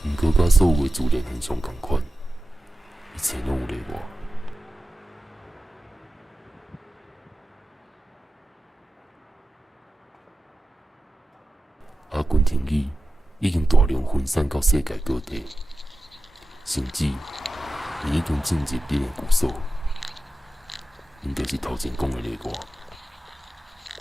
毋过，甲所有的自然现象同款，一切拢有例外。阿根廷语已经大量分散到世界各地，甚至已经进入恁的故所，因就是头前讲的例外。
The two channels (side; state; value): both; normal; correlation 0.93